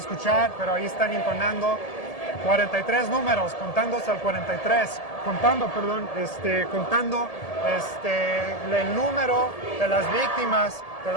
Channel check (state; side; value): late; right; 1.7 ms